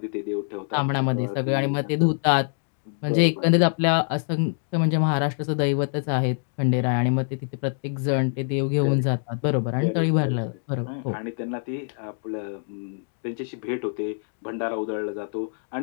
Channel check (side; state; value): right; silent; 62 dB below the other